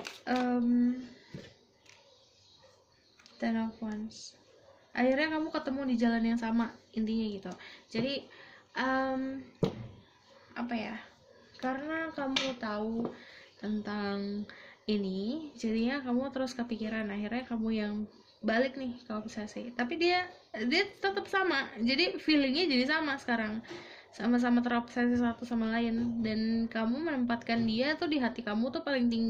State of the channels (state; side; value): identical; both; correlation 1.00